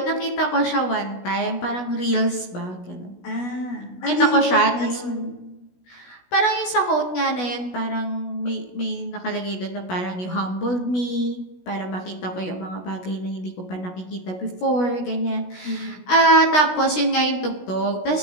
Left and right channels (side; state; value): right; late; 16 ms